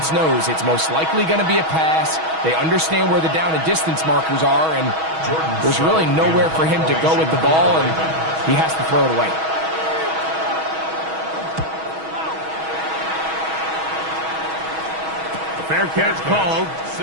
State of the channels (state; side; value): late; left; 6.2 ms